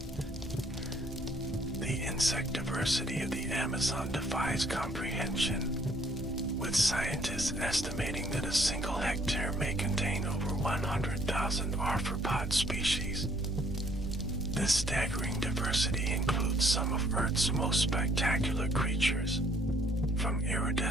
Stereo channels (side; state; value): both; normal; correlation 0.63